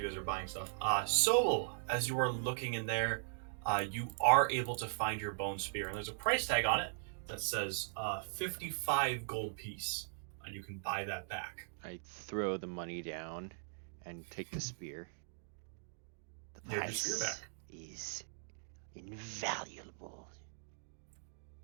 guys are buying stuff. So as you are looking in there, you are able to find your bone spear, and there's a price tag on it that says 55 gold piece, and you can buy that back. I throw the money down and take the spear. The You have your spear price back. is invaluable.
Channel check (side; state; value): left; silent; digital silence